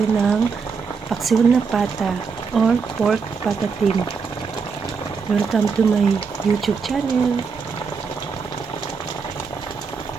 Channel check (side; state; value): left; quieter; 5.4 dB